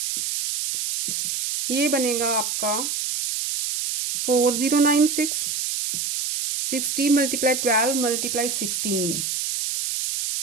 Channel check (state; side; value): noise; right; hiss, 2 dB below the sound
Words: ये बनेगा आपका 4096. 60 मल्टीप्लाई 12 मल्टीप्लाई 16,